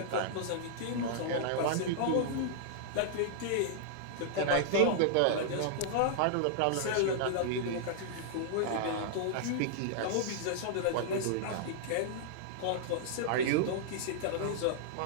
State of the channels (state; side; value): different; both; correlation -0.01